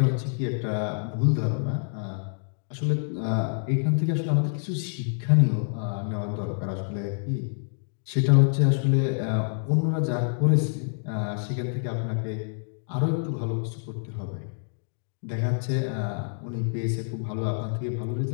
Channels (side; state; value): right; silent; digital silence